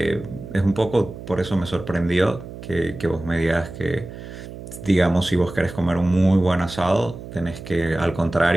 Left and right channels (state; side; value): noise; right; hum, 13 dB below the sound